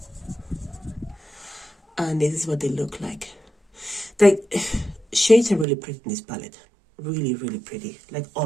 And this is what they look like. Like, shades are really pretty in this palette. Really, really pretty. Like,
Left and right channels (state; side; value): drops out; left; at 5.7 s